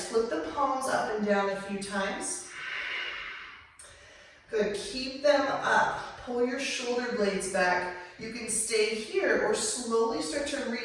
Flip the palms up and down a few times. Good, keep them up. Pull your shoulder blades back. You can stay here or slowly start to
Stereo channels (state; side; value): identical; both; correlation 1.00